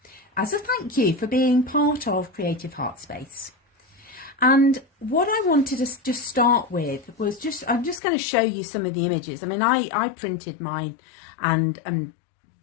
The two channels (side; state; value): right; drops out; at 8.0 s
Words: as a thank you for being part of Creative Heart Space. And what I wanted to just start with was I'm just going to show you some of the images. I mean, I printed mine and